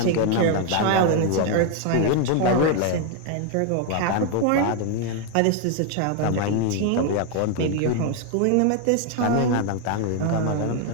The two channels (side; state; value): both; different; correlation 0.01